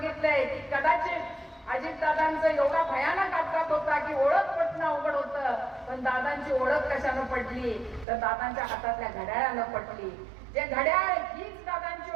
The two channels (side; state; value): left; drops out; at 8.1 s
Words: की कदाचित अजितदादांचं एवढा भयानक अपघात होता की ओळख पटणं अवघड होतं, पण दादांची ओळख कशानं पडली तर दादांच्या हातातल्या घड्याळानं पडली। जे घड्याळ हीच